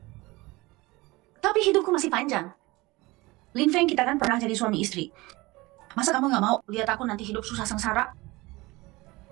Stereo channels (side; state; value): left; quieter; 21.8 dB